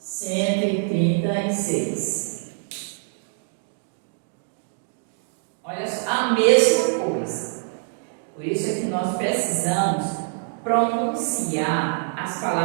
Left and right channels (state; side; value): silent; left; digital silence